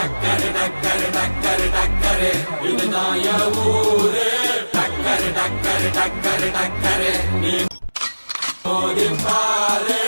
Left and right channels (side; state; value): both; inverted; correlation -1.00